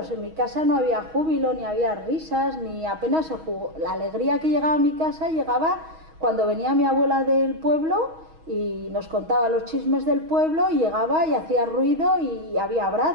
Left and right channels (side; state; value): left; late; 6.3 ms